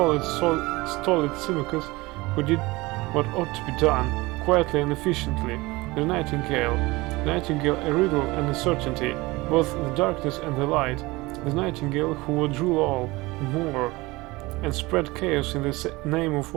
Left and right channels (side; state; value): left; quieter; 21.9 dB